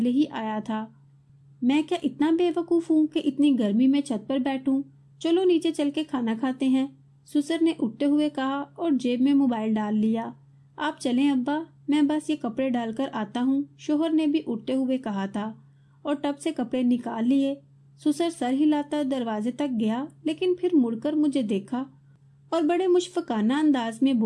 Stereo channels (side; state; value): both; identical; correlation 1.00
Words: ही आया था। मैं क्या इतना बेवकूफ हूँ कि इतनी गर्मी में छत पर बैठूं? चलो नीचे चल के खाना खाते हैं, सुसर ने उठते हुए कहा और जेब में मोबाइल डाल लिया। आप चलें अब्बा, मैं बस ये कपड़े डालकर आता हूँ, शोहर ने भी उठते हुए कहा था और टब से कपड़े निकाल लिए। सुसर सर हिलाता दरवाजे तक गया, लेकिन फिर मुड़कर मुझे देखा और बड़े मुशफकाना अंदाज में